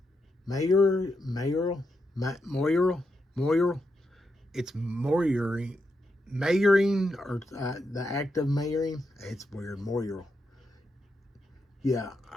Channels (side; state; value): both; normal; correlation 0.84